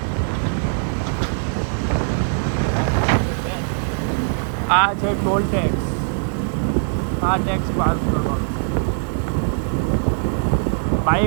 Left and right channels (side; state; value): left; silent; digital silence